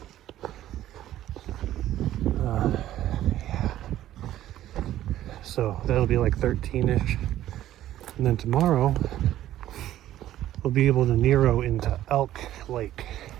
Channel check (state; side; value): quieter; left; 13.1 dB